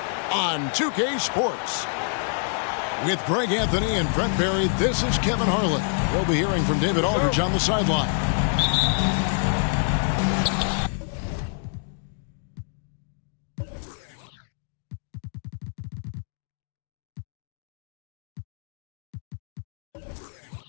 on 2K Sports. With Greg Anthony and Brent Barry, this is Kevin Harlan. We'll be hearing from David Aldridge on the sideline.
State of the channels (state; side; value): silent; right; 61 dB below the other